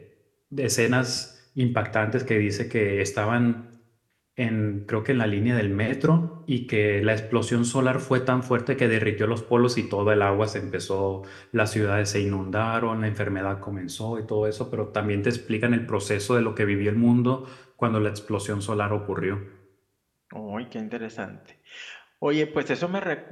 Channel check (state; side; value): identical; both; correlation 1.00